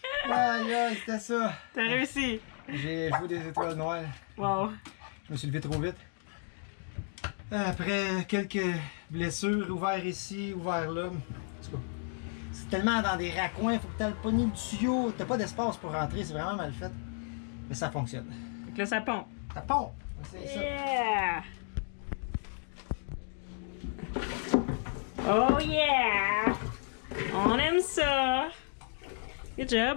Aïe aïe, c'était ça! T'as réussi! J'ai joué des étoiles noires. Wow! Je me suis levé trop vite. Après quelques blessures, ouvert ici, ouvert là. En tout cas, c'est tellement dans des raccoins, il faut que tu aies le poignet du tuyau. T'as pas d'espace pour rentrer, c'est vraiment mal fait. Mais ça fonctionne. Fait que là, ça pompe. Ça pompe! C'est ça. Yeah! Oh yeah! On aime ça! Good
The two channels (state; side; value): silent; right; 56 dB below the other